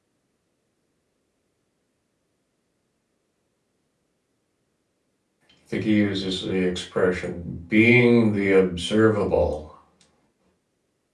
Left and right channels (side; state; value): both; identical; correlation 1.00